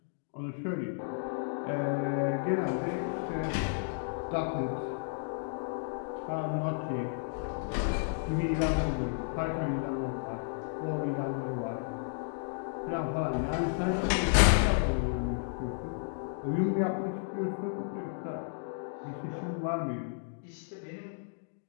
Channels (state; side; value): silent; right; digital silence